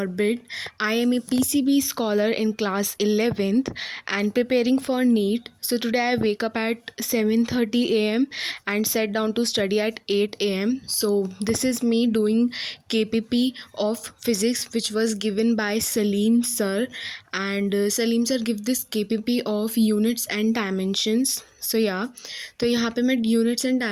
I am a PCB scholar in class 11th and preparing for NEET. So today I wake up at 7:30 a.m. and sat down to study at 8 a.m. So this is me doing KPP of physics which was given by Salim sir, and Salim sir give this KPP of units and dimensions. So तो यहाँ पे मैं यूनिट्स एंड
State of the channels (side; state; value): both; identical; correlation 1.00